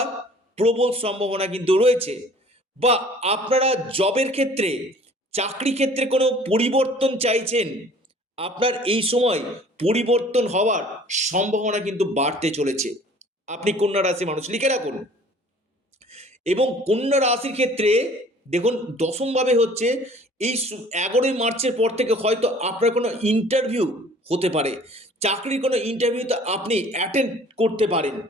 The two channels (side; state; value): both; normal; correlation 0.51